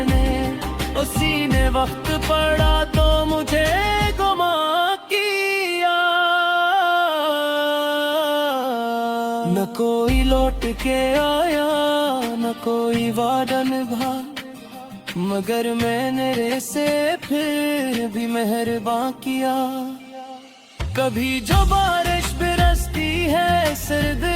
उसी ने वक्त पड़ा तो मुझे गुमा किया। न कोई लौट के आया न कोई वादा निभा, मगर मैंने रे से फिर भी मेहरबान किया। कभी जो बारिश बरसती है सर्द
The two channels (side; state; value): both; identical; correlation 1.00